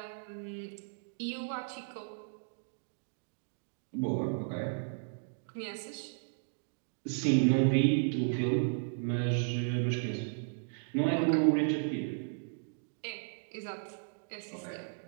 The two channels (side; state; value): left; silent; digital silence